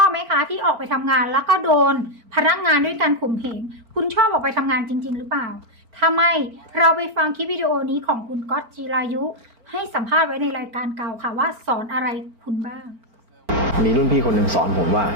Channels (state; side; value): late; left; 4.4 ms